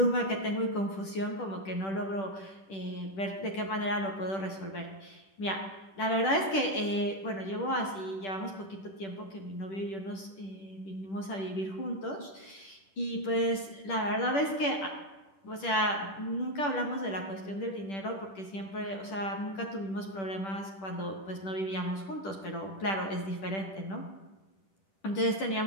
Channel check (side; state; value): right; late; 10 ms